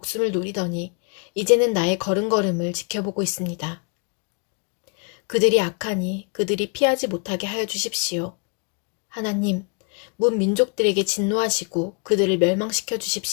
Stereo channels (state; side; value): quieter; right; 38.7 dB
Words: 노리더니 이제는 나의 걸음걸음을 지켜보고 있습니다. 그들이 악하니 그들이 피하지 못하게 하여 주십시오. 하나님, 문 민족들에게 진노하시고 그들을 멸망시켜